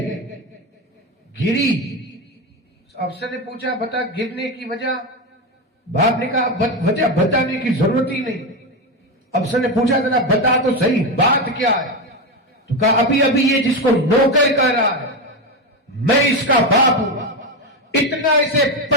گری۔ افسر نے پوچھا بتا گرنے کی وجہ؟ باپ نے کہا وجہ بتانے کی ضرورت ہی نہیں۔ افسر نے پوچھا ذرا بتا تو صحیح بات کیا ہے؟ تو کہا ابھی یہ جس کو نوکر کہہ رہا ہے میں اس کا باپ ہوں، اتنا اسے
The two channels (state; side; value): normal; both; correlation 0.13